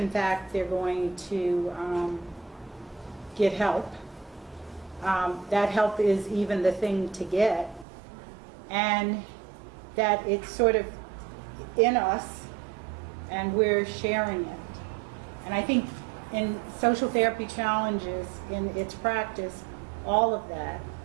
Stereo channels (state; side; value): drops out; left; at 7.9 s